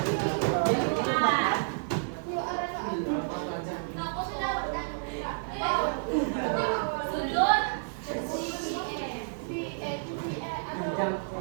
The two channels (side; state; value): left; silent; digital silence